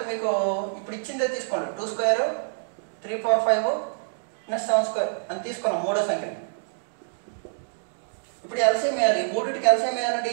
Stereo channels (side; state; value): left; silent; digital silence